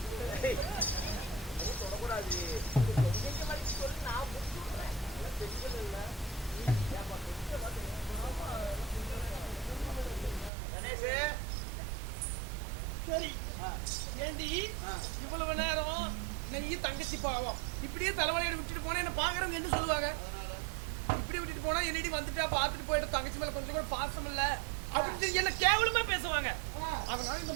தொடக்கூடாது எங்க வலிக்கு சொல்லி நான் புரிஞ்சுக்கிறேன் தெரிஞ்சது இல்ல கணேஷ் சரி ஏண்டி இவ்வளவு நேரம் நெய் தங்கச்சி பாவம் இப்படியே தலைவலியோட விட்டுட்டு போனா என்ன பாக்குறவங்க என்ன சொல்லுவாங்க இப்படி விட்டுட்டு போனா என்னடி வந்துட்டா பாத்துட்டு போயிட்டு தங்கச்சி மேல கொஞ்சம் கூட பாசம் இல்ல அப்படின்னு என்ன கேவலமா பேசுவாங்க அதனால இந்த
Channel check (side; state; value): left; drops out; at 10.5 s